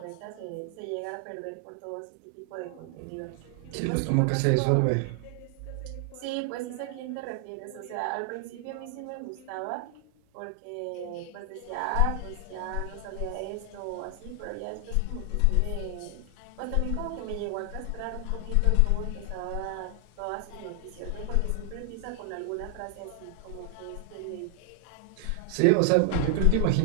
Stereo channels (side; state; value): both; different; correlation 0.00